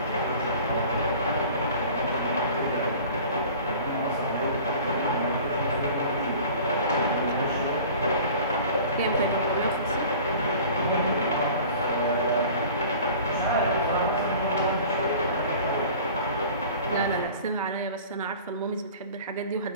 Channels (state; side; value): inverted; both; correlation -0.44